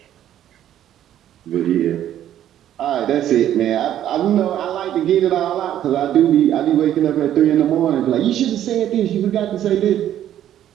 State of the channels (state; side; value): quieter; left; 11.3 dB